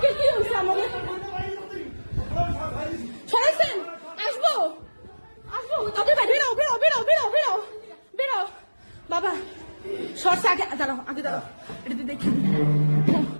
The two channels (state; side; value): inverted; both; correlation -1.00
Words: কি হয়েছে আমাদের সরাইছেন আসবো আসবো ওকে ভাই বেরো বেরো বেরো বেরো বেরো বেরো বাবা সরষে আগে দাঁড়াও আগে দাঁড়াও এটা দেখি